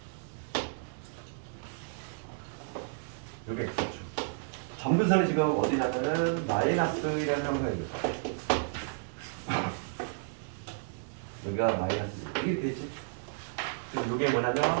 점근선이 지금 어디냐면은 마이너스라는 형성입니다. 여기가 마이너스 이게 되지. 그럼 이게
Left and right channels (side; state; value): left; silent; digital silence